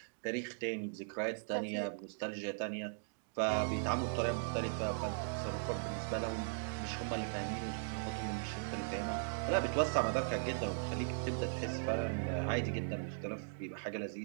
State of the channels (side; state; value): left; silent; digital silence